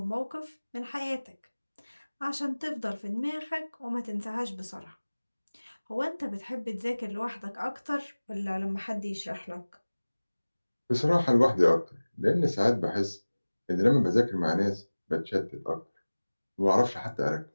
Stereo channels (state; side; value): inverted; both; correlation -1.00